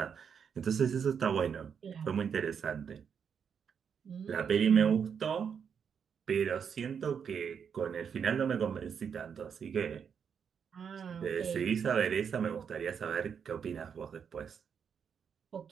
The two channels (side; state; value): left; quieter; 7.1 dB